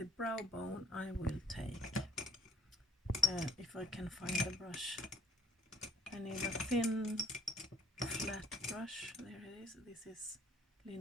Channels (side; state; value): both; normal; correlation 0.62